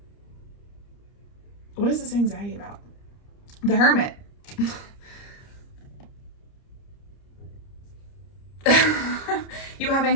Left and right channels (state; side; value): late; right; 30 ms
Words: What is this anxiety about? The Hermit. You have